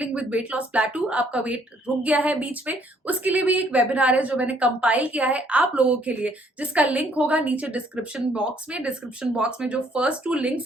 with weight loss plateau, आपका वेट रुक गया है बीच में, उसके लिए भी एक वेबिनार है जो मैंने कंपाइल किया है आप लोगों के लिए, जिसका लिंक होगा नीचे डिस्क्रिप्शन बॉक्स में. डिस्क्रिप्शन बॉक्स में जो फर्स्ट 2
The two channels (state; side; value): normal; both; correlation 0.65